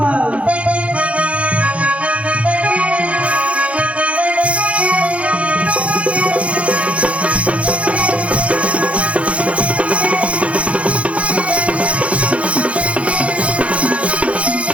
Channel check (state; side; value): late; left; 0.063 ms